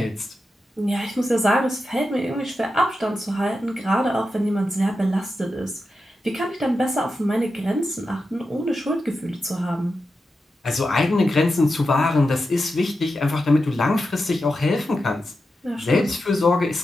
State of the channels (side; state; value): both; normal; correlation 0.89